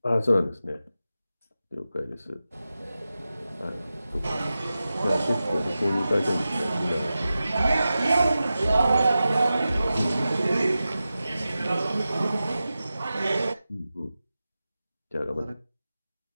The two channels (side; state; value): both; inverted; correlation -0.94